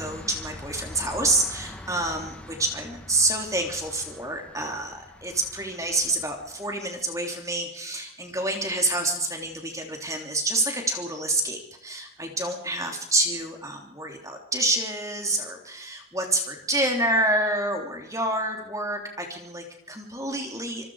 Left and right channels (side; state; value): both; normal; correlation 0.13